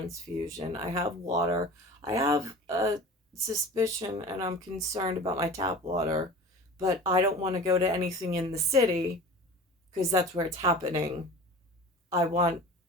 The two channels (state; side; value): normal; both; correlation 0.38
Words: I have water. I have a suspicion and I'm concerned about my tap water, but I don't want to go to anything in the city because that's where it's happening. I want